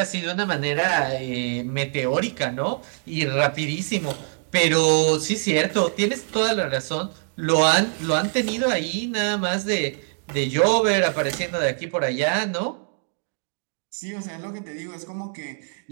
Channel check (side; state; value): left; silent; 55 dB below the other